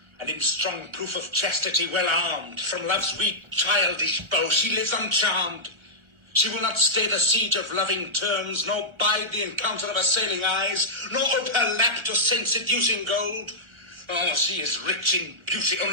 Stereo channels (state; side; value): late; left; 1.4 ms